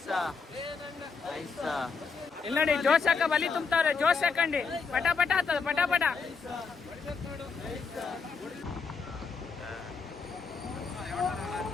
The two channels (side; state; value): right; quieter; 5.1 dB